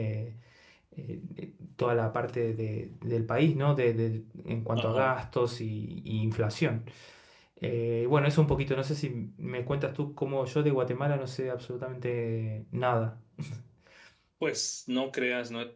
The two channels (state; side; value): identical; both; correlation 1.00